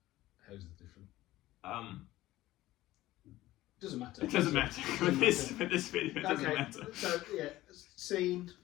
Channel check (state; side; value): quieter; right; 16.4 dB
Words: How's it different? Doesn't matter. It doesn't matter. With this video, it doesn't Okay, matter. so yeah, scene.